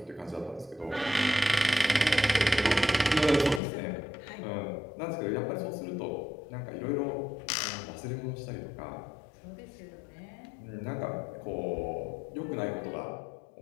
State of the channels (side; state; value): right; drops out; at 3.6 s